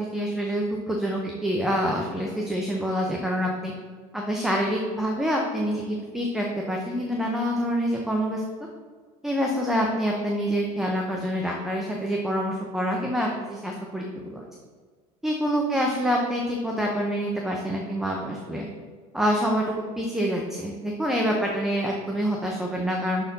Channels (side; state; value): both; normal; correlation 0.65